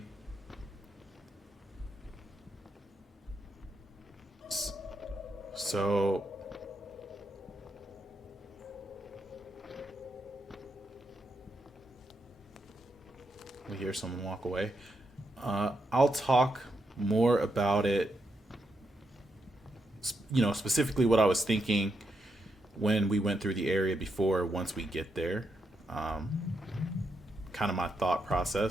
So we hear someone walk away. I'll talk more about it, specifically what I was thinking when we went through the area before, once we get there. Kind of my thought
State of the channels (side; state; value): both; normal; correlation 0.82